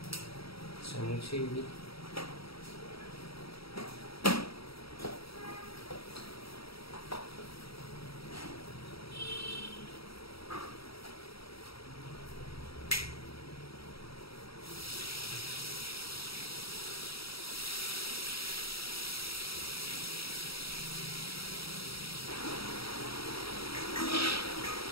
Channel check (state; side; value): late; right; 0.76 ms